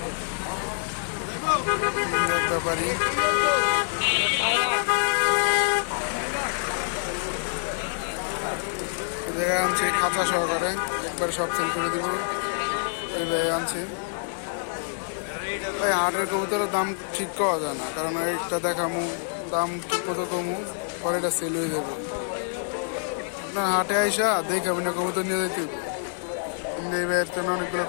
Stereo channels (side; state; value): right; silent; 61 dB below the other